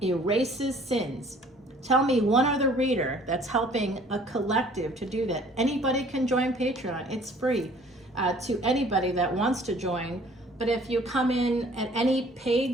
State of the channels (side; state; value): both; normal; correlation 0.54